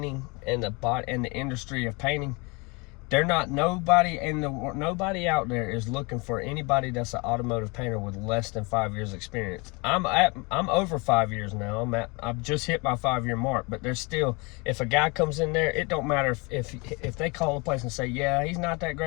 and the industry of painting, nobody out there is looking for anybody that's an automotive painter with less than 5 years experience. I'm over 5 years now. I've just hit my 5-year mark, but there's still, if a guy comes in there, it don't matter if they call the place and say, yeah, he's not that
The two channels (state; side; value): quieter; right; 28.5 dB